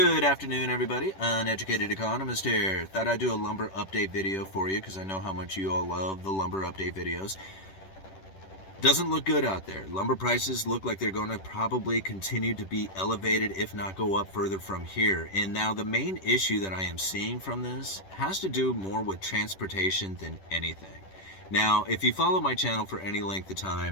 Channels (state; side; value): late; right; 10 ms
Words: afternoon, everybody. Uneducated economist here. Thought I'd do a lumber update video for you because I know how much you all love the lumber update videos. Doesn't look good out there. Lumber prices look like they're going to probably continue to be elevated, if not go up further from here. And now the main issue that I am seeing from this has to do more with transportation than anything. Now, if you follow my channel for any length of